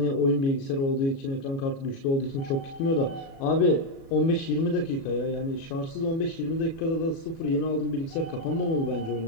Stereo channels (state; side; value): late; right; 36 ms